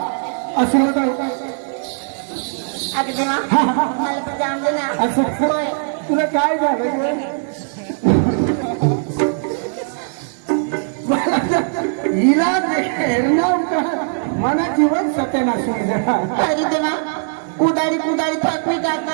आशीर्वाद आहे. अगं देवा, मला पण जाऊन दे ना. असं होय. तुला काय झालं? हिला मला जीवन सत्यानाश. अरे देवा, कुदारी कुदारी थकवी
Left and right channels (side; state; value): left; silent; digital silence